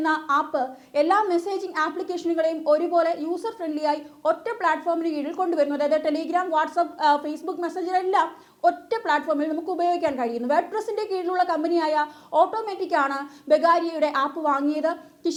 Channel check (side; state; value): both; identical; correlation 1.00